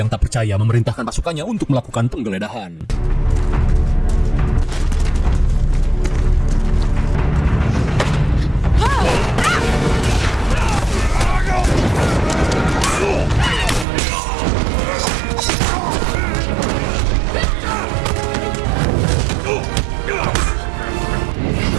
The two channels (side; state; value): left; drops out; at 13.9 s